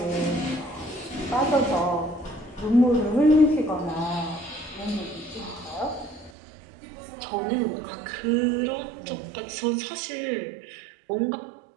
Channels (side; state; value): left; drops out; at 6.3 s